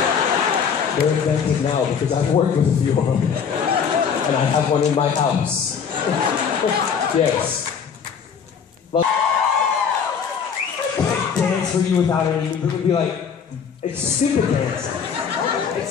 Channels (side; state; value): right; quieter; 6.8 dB